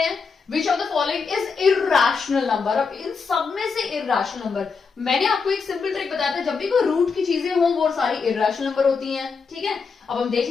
which of the following is irrational number. अब इन सब में से इरैशनल नंबर, मैंने आपको एक सिंपल ट्रिक बताया था, जब भी कोई रूट की चीजें हों वो सारी इरैशनल नंबर होती हैं। ठीक है, अब हम देख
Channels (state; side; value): quieter; right; 5.2 dB